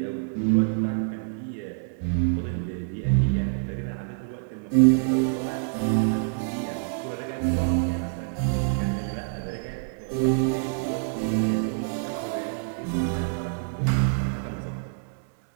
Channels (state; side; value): silent; left; digital silence